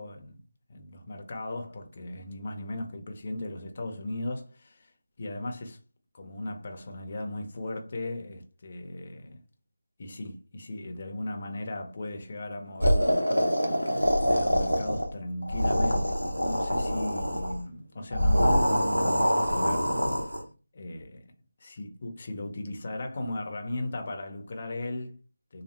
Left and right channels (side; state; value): both; inverted; correlation -0.96